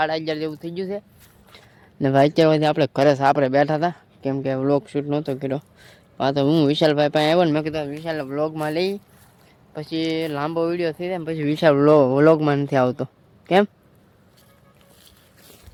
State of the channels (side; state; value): both; identical; correlation 1.00